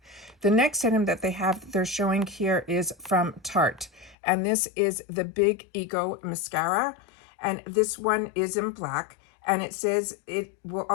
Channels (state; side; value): drops out; right; at 4.2 s